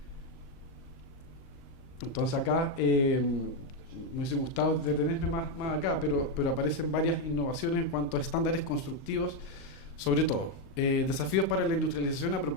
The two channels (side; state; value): right; late; 38 ms